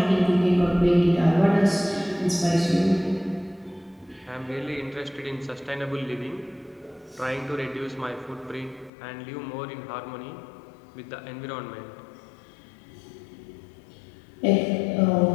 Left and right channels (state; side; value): drops out; right; at 8.9 s